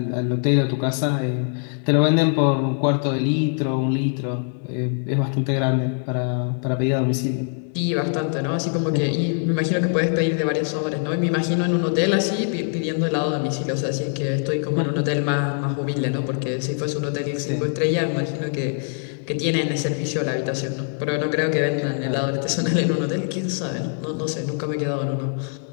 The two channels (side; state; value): right; silent; 57 dB below the other